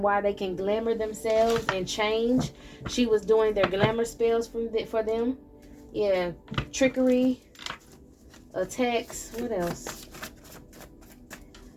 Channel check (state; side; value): identical; both; correlation 1.00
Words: why they can glamour themselves and change. She was doing their glamour spells for them. Yeah, trickery, attacks. What else?